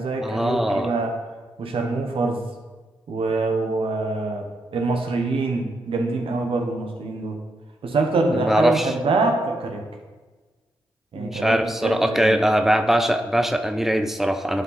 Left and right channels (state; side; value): normal; both; correlation 0.83